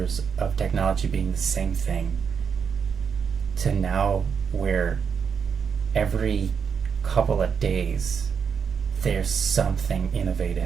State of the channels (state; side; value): quieter; left; 6.6 dB